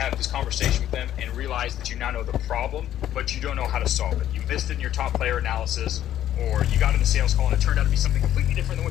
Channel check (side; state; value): right; quieter; 11.8 dB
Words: this conversation with them and realize that you now know the problem, but you don't know how to solve it. You missed it in your top player analysis, or you got in the sales call and it turned out to be something completely different than